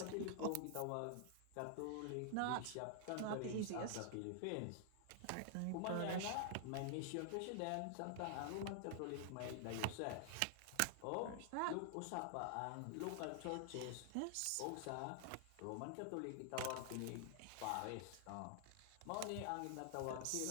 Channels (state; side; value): different; both; correlation -0.01